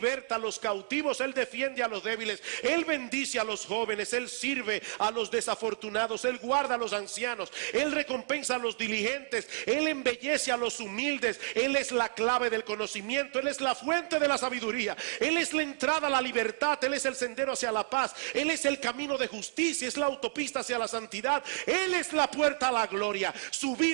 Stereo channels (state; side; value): silent; left; 57 dB below the other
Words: a los cautivos. Él defiende a los débiles. Él bendice a los jóvenes. Él sirve a los desafortunados. Él guarda a los ancianos. Él recompensa a los diligentes. Él embellece a los humildes. Él es la clave del conocimiento. Él es la fuente de la sabiduría. Él es la entrada a la libertad. Él es el sendero hacia la paz. Él es el camino de justicia. Es la autopista hacia la santidad. Él es la puerta a la gloria. Su